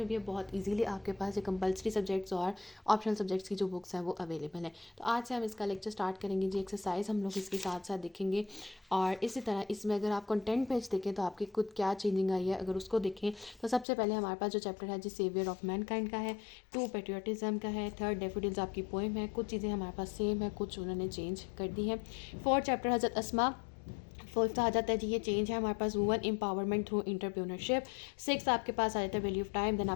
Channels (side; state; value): right; drops out; at 13.9 s